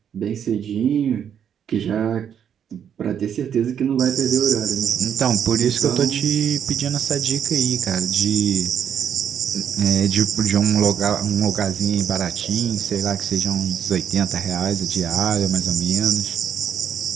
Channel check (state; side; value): quieter; left; 8.6 dB